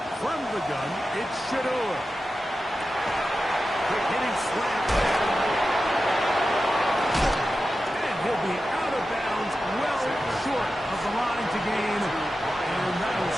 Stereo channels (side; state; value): both; normal; correlation 0.92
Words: the gun, it's Shador. Quick hitting slant. And he'll be out of bounds, well short of the line to gain. And that'll